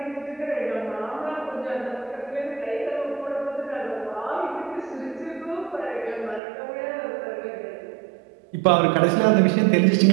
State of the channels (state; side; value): drops out; left; at 6.4 s